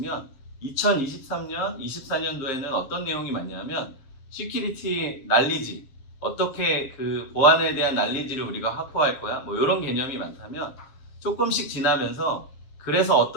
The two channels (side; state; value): right; late; 7.4 ms